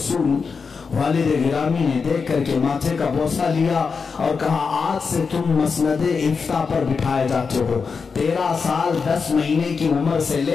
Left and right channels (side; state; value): right; quieter; 5.2 dB